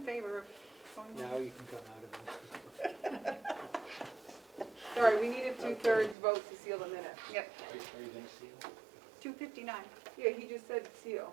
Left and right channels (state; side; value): drops out; left; at 6.2 s